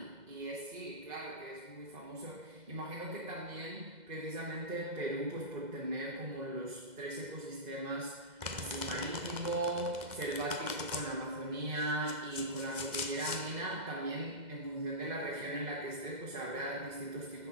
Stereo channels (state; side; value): late; left; 2.0 ms